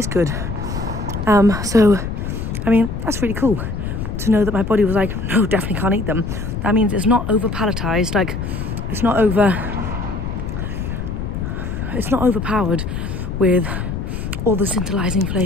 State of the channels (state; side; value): noise; left; rumble, 4 dB below the sound